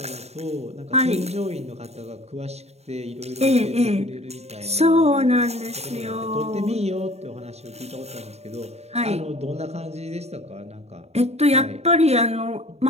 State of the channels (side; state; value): left; late; 0.31 ms